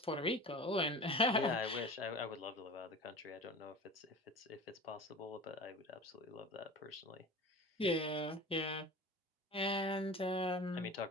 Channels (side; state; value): both; normal; correlation 0.36